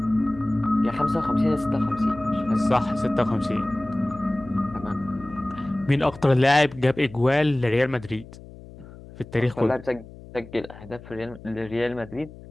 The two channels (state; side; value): noise; left; hum, 18 dB below the sound